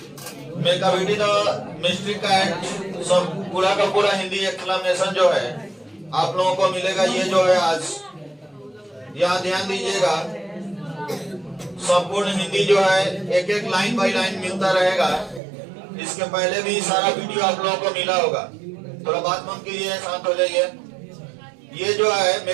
मेका बेटी द मिस्ट्री कैट सब पूरा का पूरा हिंदी एक्सप्लेनेशन जो है आप लोगों को मिलेगा। ये जो है आज यहाँ ध्यान दीजिएगा, संपूर्ण हिंदी जो है एक एक लाइन बाय लाइन मिलता रहेगा। इसके पहले भी सारा वीडियो आप लोगों को मिला होगा। थोड़ा बात बंद कीजिए, शांत हो जाइए। ये जो है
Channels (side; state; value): left; drops out; at 15.4 s